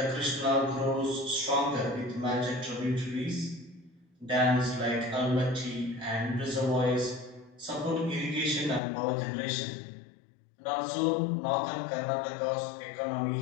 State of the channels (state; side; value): drops out; right; at 8.8 s